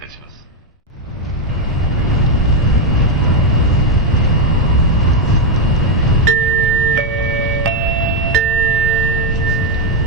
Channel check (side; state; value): both; normal; correlation 0.05